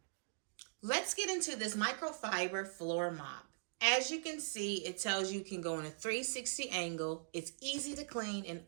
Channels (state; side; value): silent; left; digital silence